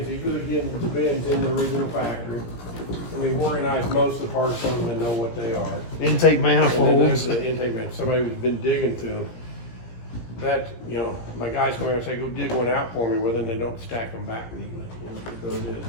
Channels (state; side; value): late; right; 17 ms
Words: These are again the bins in the original factory. And we've organized most of the parts on them and know what they are. Intake manifolds. The intake manifolds. Somebody who's been digging through them. That, my guys come here and say, go dig one out for me. Well, then they don't stack them back neatly. So it is.